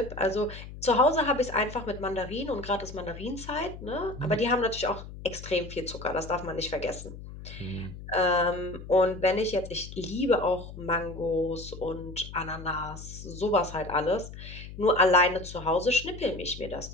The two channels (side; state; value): left; noise; hum, 13 dB below the sound